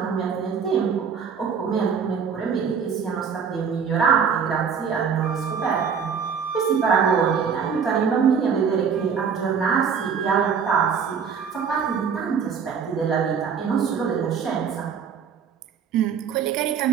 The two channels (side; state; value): left; quieter; 6.6 dB